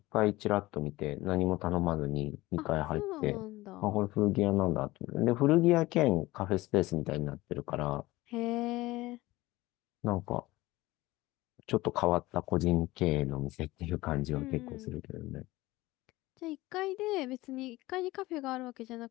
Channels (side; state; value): right; quieter; 19.1 dB